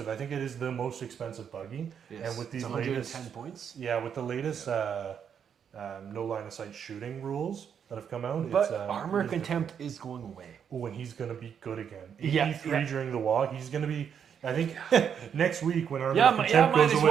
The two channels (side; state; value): left; quieter; 7.8 dB